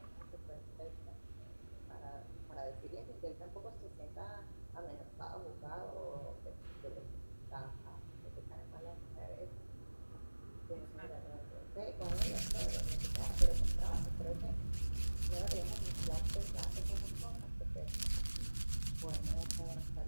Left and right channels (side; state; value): both; inverted; correlation -1.00